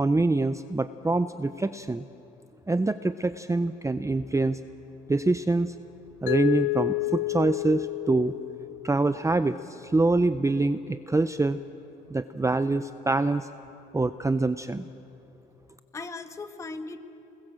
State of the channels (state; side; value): normal; both; correlation 0.81